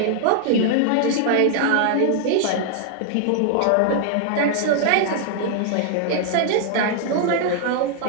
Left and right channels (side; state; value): both; different; correlation 0.00